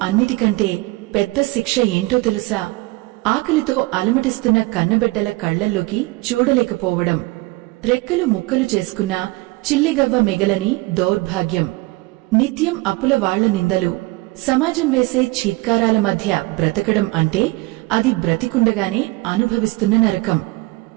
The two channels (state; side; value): quieter; left; 22.3 dB